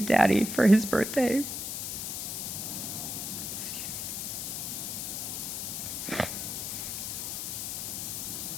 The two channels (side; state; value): left; noise; hiss, 4 dB below the sound